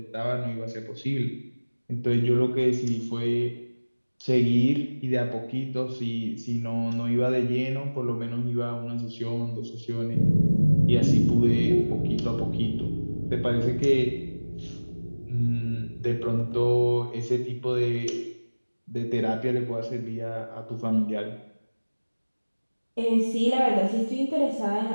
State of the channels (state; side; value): inverted; both; correlation -1.00